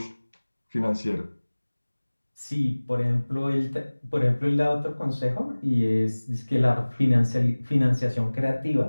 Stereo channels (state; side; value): inverted; both; correlation -1.00